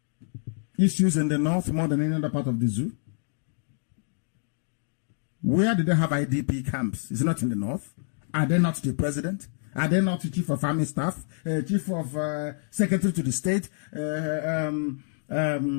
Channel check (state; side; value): silent; right; digital silence